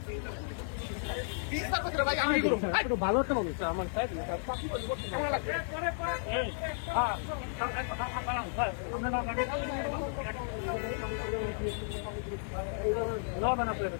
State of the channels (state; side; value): silent; right; digital silence